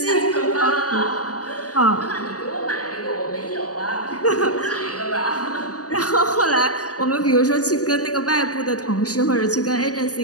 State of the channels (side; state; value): right; late; 0.67 ms